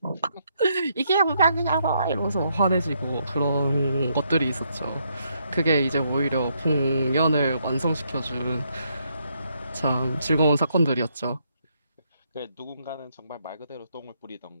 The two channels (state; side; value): inverted; both; correlation -0.75